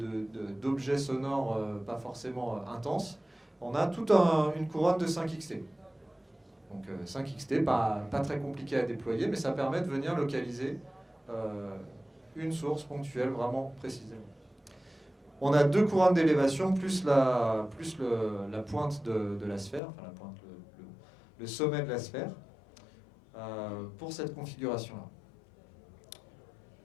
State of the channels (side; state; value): right; drops out; at 19.8 s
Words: d'objets sonores pas forcément intenses, on a toute une couronne de 5XT. Donc 5XT, pas très compliqué à déployer, mais ça permet de venir localiser une source ponctuelle vraiment précisément. On a 2 couronnes d'élévation plus la pointe de la sphère, enfin la pointe, le sommet de la sphère, pour cette configuration-là.